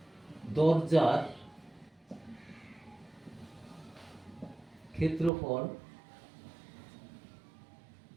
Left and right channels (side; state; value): left; drops out; at 5.3 s